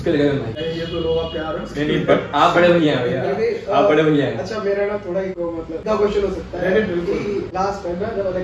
ये तो लोग प्यार है। आप बड़े भैया हैं, आप बड़े भैया हैं। अच्छा मेरा ना थोड़ा मतलब क्वेश्चन हो सकता है, लास्ट टाइम ना जब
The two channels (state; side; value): identical; both; correlation 1.00